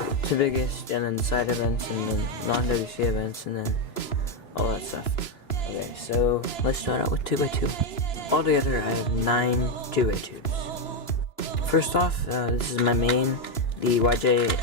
biggest, and then side events, and then non-WCA events, and then all that stuff. Okay, so let's start out with 2x2. Altogether, I have 9 2x2s. First off, this is my main, the YJ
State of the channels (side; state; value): right; late; 3.0 ms